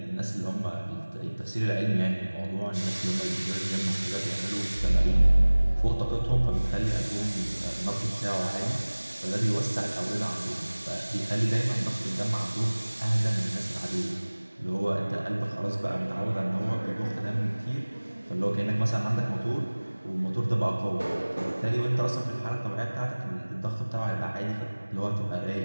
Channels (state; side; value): inverted; both; correlation -1.00